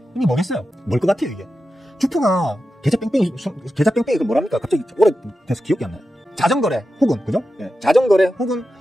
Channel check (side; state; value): both; normal; correlation 0.91